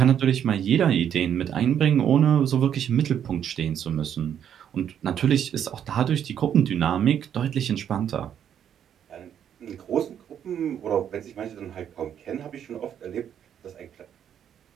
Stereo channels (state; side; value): quieter; left; 9.2 dB